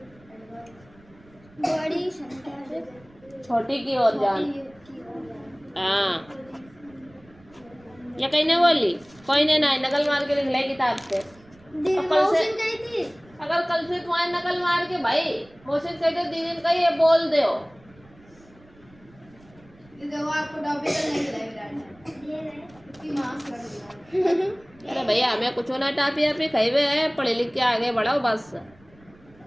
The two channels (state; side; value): noise; right; rumble, 27 dB below the sound